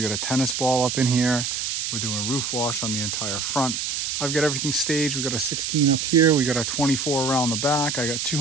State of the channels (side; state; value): right; noise; hiss, 2 dB below the sound